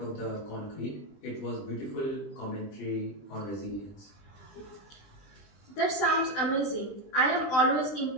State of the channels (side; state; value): right; late; 20 ms